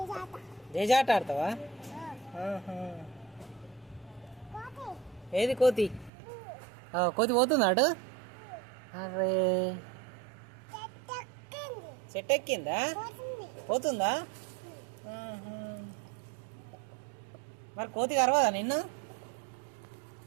జేజాట ఆడతావా? ఏది కోతి? కోతి పోతుందా అటు? అరే చెట్టు ఎక్కిందా? పోతుందా? మరి కోతి కరవదా నిన్ను?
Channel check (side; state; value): left; drops out; at 6.1 s